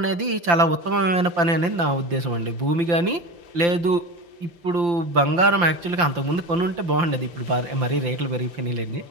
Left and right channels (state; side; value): late; left; 5.8 ms